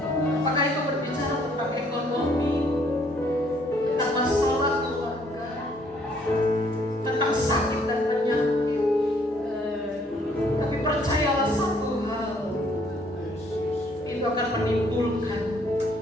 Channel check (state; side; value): normal; both; correlation 0.65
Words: Apakah itu berbicara tentang ekonomi, tentang masalah keluarga, tentang sakit dan penyakit. Tapi percayalah satu hal, itu akan menimbulkan